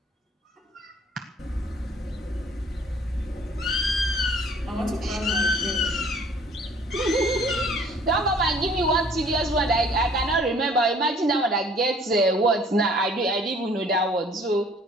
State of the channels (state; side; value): normal; both; correlation 0.55